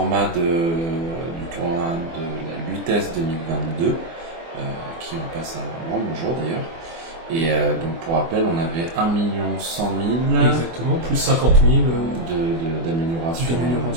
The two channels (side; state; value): left; late; 24 ms